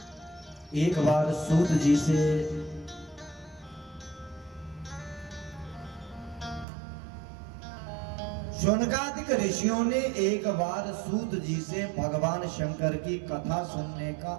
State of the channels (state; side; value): drops out; left; at 6.7 s